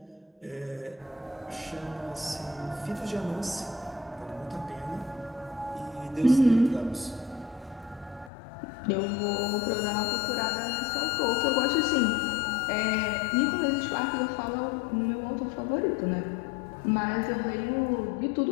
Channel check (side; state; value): right; drops out; at 8.3 s